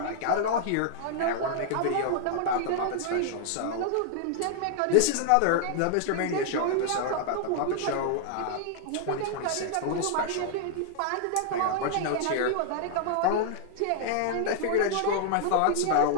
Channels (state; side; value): different; both; correlation -0.01